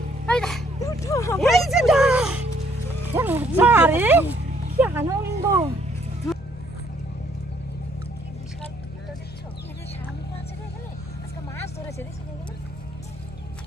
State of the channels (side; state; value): left; noise; hum, 20 dB below the sound